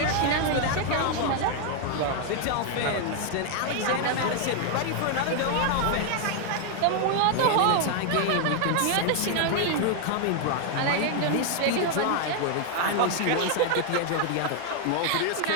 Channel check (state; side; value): different; both; correlation 0.00